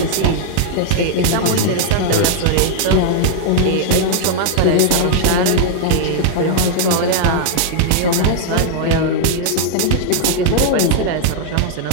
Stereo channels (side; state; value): both; different; correlation -0.01